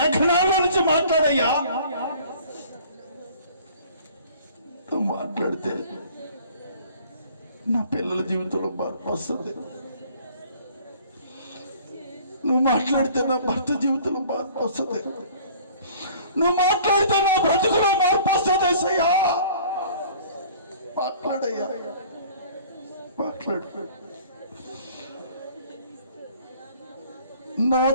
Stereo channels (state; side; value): inverted; both; correlation -0.51